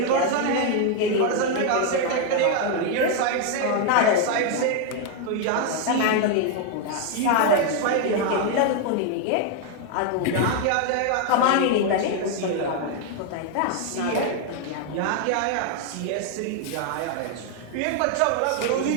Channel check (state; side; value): different; both; correlation 0.00